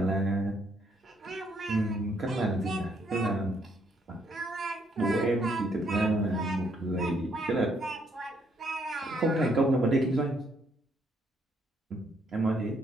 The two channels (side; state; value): both; normal; correlation 0.71